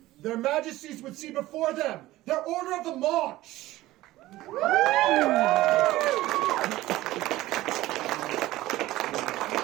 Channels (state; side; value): quieter; left; 16.8 dB